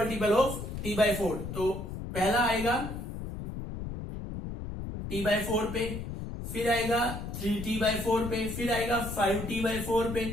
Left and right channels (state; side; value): noise; left; rumble, 7 dB below the sound